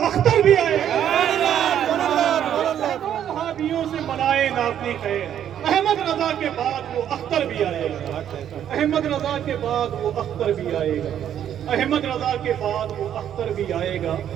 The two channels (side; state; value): left; quieter; 10.0 dB